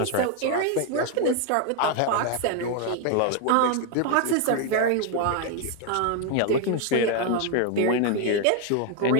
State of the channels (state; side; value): different; both; correlation 0.01